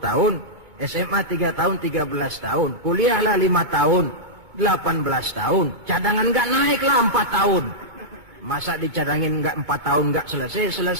SMA 3 tahun, 13 tahun, kuliahlah 5 tahun, 18 tahun, cadangan nggak naik lah 4 tahun. Masa dicadangin nggak 4 tahun nggak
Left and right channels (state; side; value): late; left; 2.2 ms